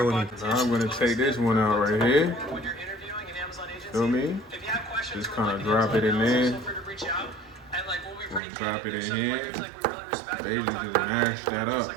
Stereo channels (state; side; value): drops out; left; at 8.4 s